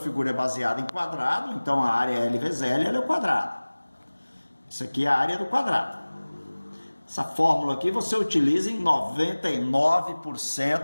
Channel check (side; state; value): both; inverted; correlation -1.00